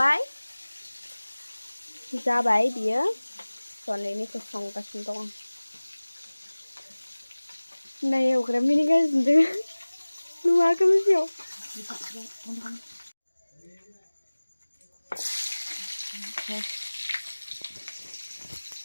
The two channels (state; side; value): inverted; both; correlation -1.00